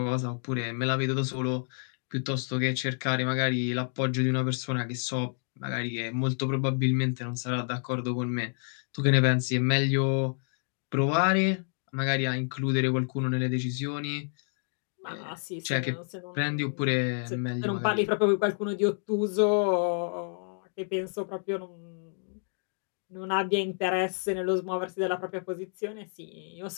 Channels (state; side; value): silent; right; 58 dB below the other